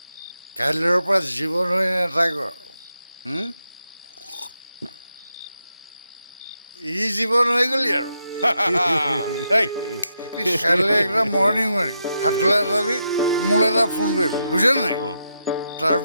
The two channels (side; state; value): both; inverted; correlation -0.83